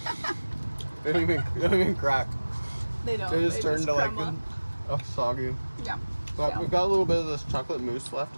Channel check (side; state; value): both; inverted; correlation -1.00